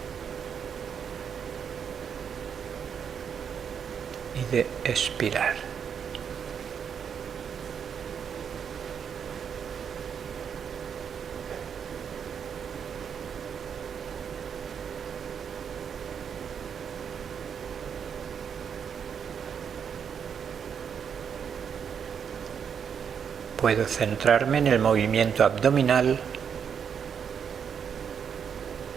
y de expirar. Puedo centrarme en el movimiento abdominal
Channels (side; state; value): left; quieter; 7.4 dB